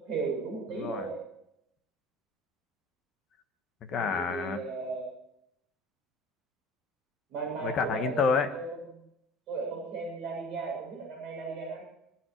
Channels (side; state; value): both; normal; correlation 0.43